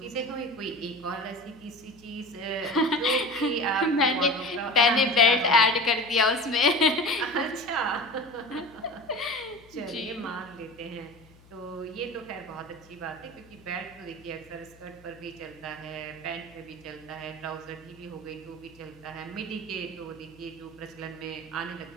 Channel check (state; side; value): noise; left; hum, 25 dB below the sound